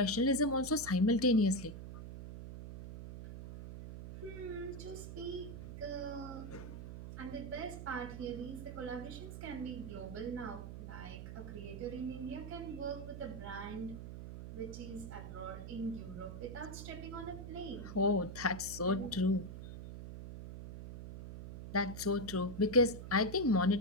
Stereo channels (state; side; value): noise; right; hum, 9 dB below the sound